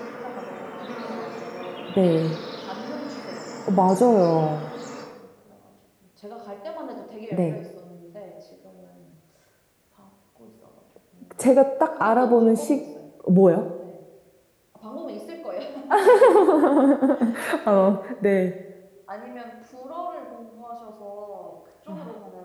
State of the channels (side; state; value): both; identical; correlation 1.00